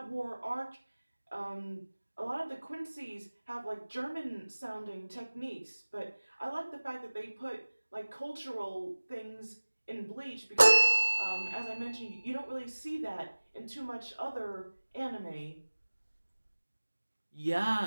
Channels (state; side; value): inverted; both; correlation -1.00